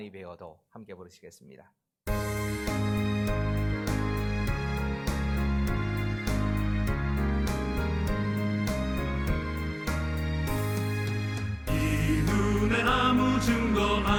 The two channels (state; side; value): identical; both; correlation 1.00